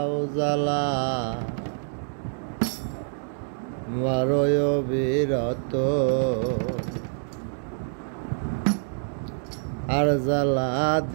জ্বালা মারয় বিরত আর জ্বালা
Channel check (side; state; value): left; silent; digital silence